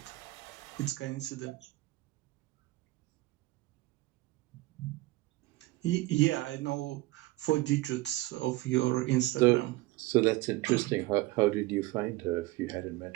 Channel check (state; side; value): quieter; left; 19.2 dB